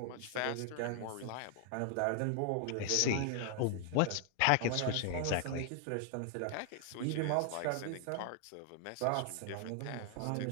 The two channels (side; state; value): both; different; correlation 0.00